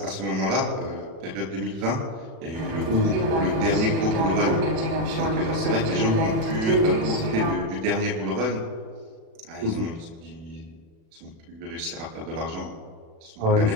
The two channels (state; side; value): late; left; 36 ms